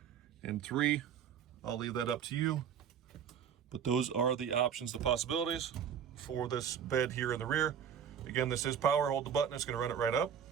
and 3. I'll leave that up to you. But those are the options, the possibilities for this bed here in the rear. Again, this is power. Hold the button, it's gonna run it right up.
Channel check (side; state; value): left; quieter; 8.3 dB